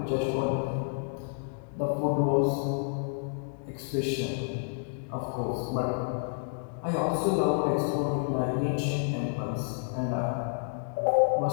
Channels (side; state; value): right; silent; digital silence